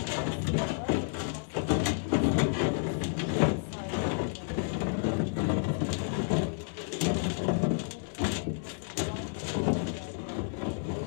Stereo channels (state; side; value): silent; right; digital silence